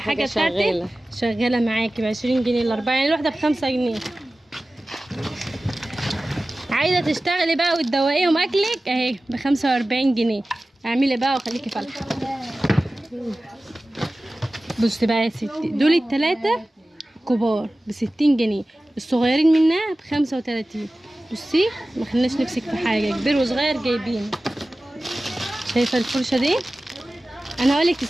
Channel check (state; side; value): normal; both; correlation 0.96